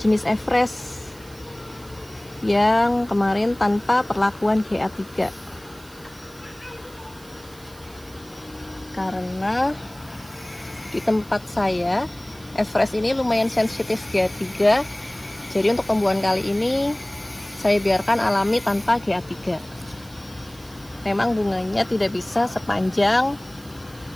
Everest yang kemarin tanpa perlakuan GA3. Karena di tempat saya Everest ini lumayan sensitif GA3. Jadi untuk pembuahan kali ini saya biarkan alami tanpa GA3. Memang bunganya tidak bisa sepanjang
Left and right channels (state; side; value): noise; right; hiss, 23 dB below the sound